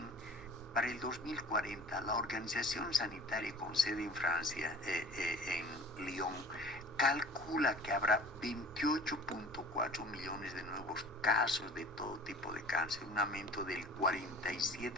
para el 2040, la Organización Sanitaria con sede en Francia, en Lyon, calcula que habrá 28.4 millones de nuevos casos de todo tipo de cáncer, un aumento del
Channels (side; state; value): both; normal; correlation 0.44